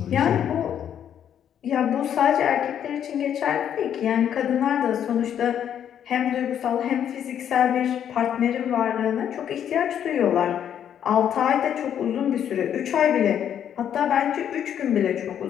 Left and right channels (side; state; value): right; quieter; 9.4 dB